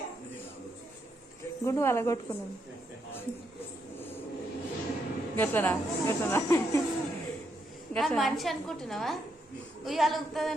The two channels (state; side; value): normal; both; correlation 0.79